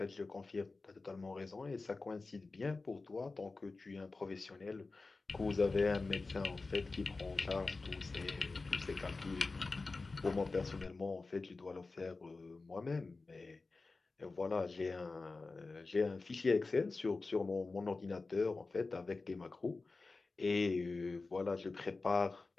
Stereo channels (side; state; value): right; quieter; 3.7 dB